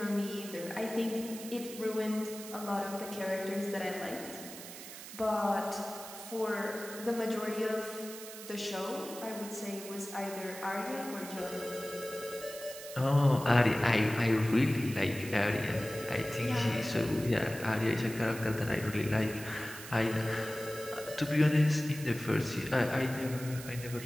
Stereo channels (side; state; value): right; noise; hiss, 12 dB below the sound